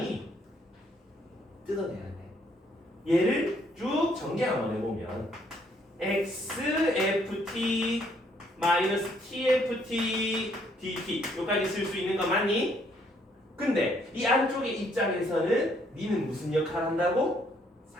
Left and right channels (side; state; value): both; normal; correlation 0.68